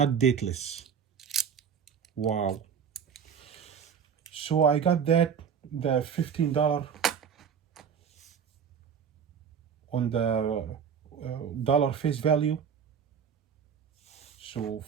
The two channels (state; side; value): quieter; left; 7.3 dB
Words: dateless. Wow. So I got the $15 on the dollar face value. So